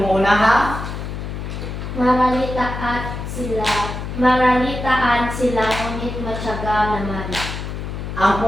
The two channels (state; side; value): noise; left; hum, 6 dB below the sound